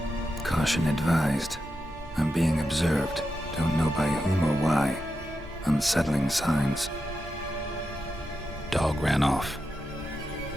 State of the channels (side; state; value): both; normal; correlation 0.88